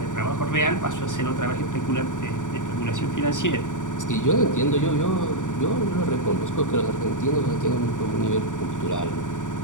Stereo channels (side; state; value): right; late; 0.86 ms